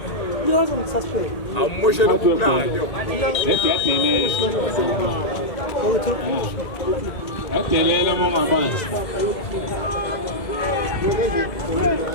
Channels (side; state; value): right; late; 2.0 ms